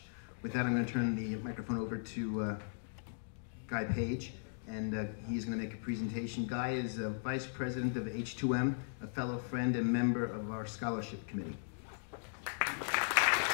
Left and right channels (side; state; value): right; silent; digital silence